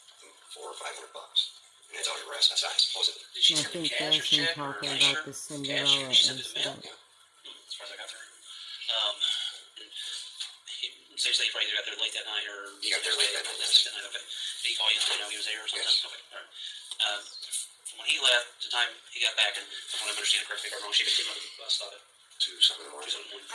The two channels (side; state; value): both; identical; correlation 1.00